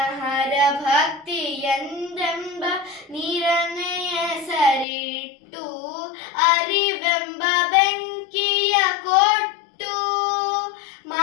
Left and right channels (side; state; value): right; drops out; at 4.9 s